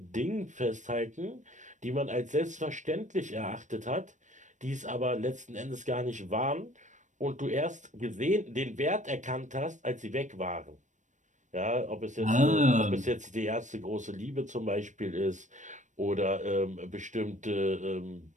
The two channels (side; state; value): left; late; 0.35 ms